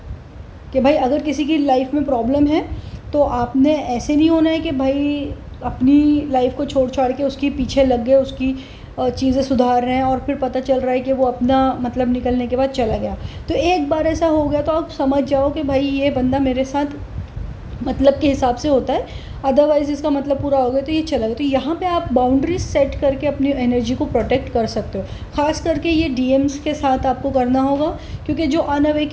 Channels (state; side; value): identical; both; correlation 1.00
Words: कि भाई अगर किसी की लाइफ में प्रॉब्लम है तो आपने ऐसे नहीं होना है कि भाई अपनी लाइफ को छोड़ छाड़ के उसकी पीछे लग गए, उसकी चीज़ें सुधार रहे हैं और फिर पता चल रहा है कि वो अपना मतलब निकलने के बाद चला गया। तो एक बार ऐसा हो गया तो आप समझ जाओ कि भाई ये बंदा मेरे साथ मतलब के हिसाब से होता है, अदरवाइज़ इसका मतलब पूरा हो गया तो ये चला गया। तो यहाँ पे आप बाउंड्रीज सेट करके अपनी एनर्जी को प्रोटेक्ट कर सकते हो। ख़ास करके ये डीएम्स के साथ आपको करना होगा, क्योंकि जो